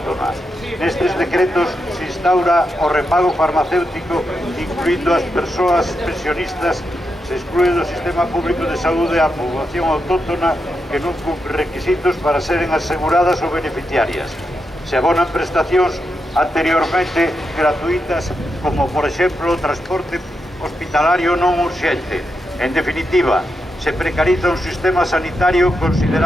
Nestes decretos se instaura o repago farmacéutico, incluindo as persoas pensionistas, se exclúe do sistema público de saúde a poboación autóctona que non cumpre requisitos para seren aseguradas ou beneficiarias. Se abonan prestacións anteriormente gratuitas, como, por exemplo, o transporte hospitalario non urxente. En definitiva, se precariza un sistema sanitario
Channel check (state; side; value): normal; both; correlation 0.85